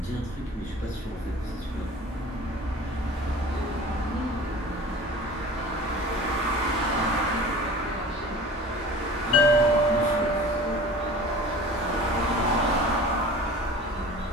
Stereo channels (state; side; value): normal; both; correlation 0.41